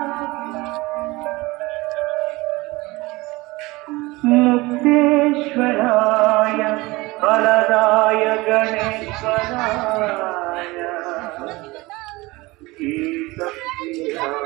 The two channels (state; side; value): quieter; left; 21.8 dB